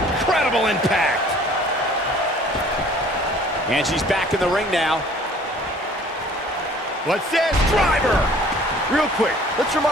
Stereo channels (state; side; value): normal; both; correlation 0.53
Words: Incredible impact. And she's back in the ring now. What's this? Driver! Real quick, let's